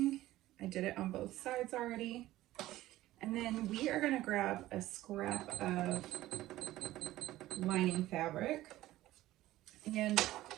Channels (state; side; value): quieter; left; 15.7 dB